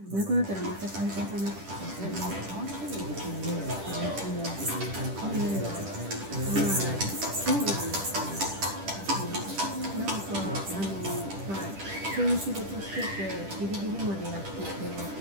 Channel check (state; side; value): late; left; 10 ms